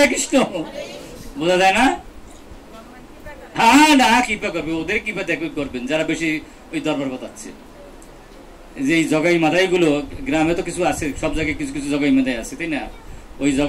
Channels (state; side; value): identical; both; correlation 1.00